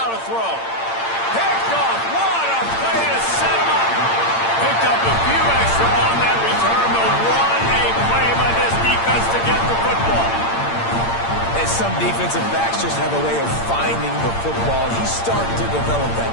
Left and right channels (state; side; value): late; right; 8.8 ms